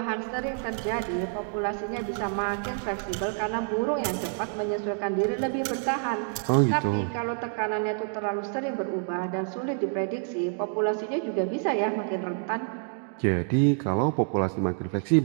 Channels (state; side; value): silent; left; 58 dB below the other